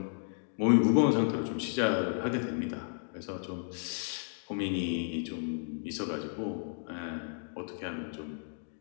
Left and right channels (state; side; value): silent; right; digital silence